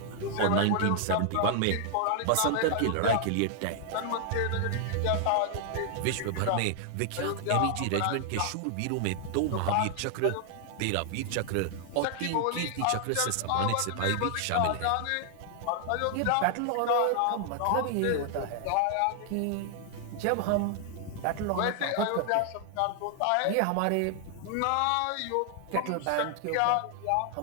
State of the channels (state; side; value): different; both; correlation 0.00